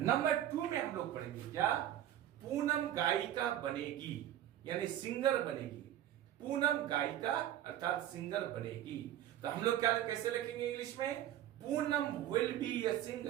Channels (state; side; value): quieter; left; 12.0 dB